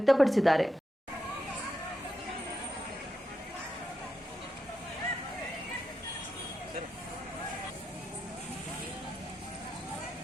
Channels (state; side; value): normal; both; correlation 0.86